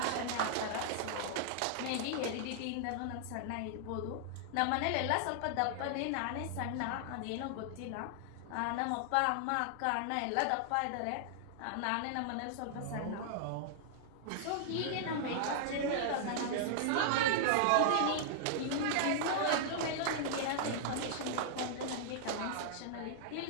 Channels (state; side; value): different; both; correlation -0.01